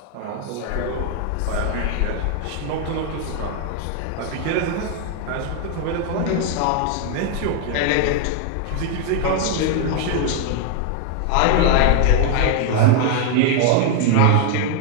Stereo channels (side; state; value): both; different; correlation 0.00